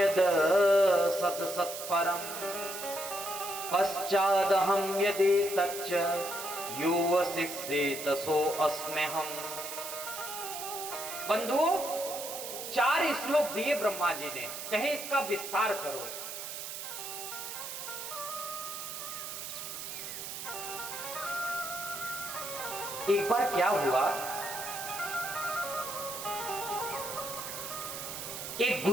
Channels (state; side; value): noise; right; hiss, 7 dB below the sound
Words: सत सत्परम पश्चादहं यदि तच्च युवशिष्येत सो अस्म्यहम्। बंधुओं, 4 श्लोक दिए ब्रह्मा जी ने, कहे इसका विस्तार करो। एक बार क्या हुआ, एक